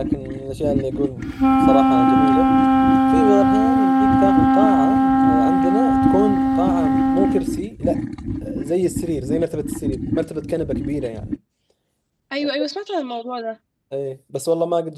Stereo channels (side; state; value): both; identical; correlation 1.00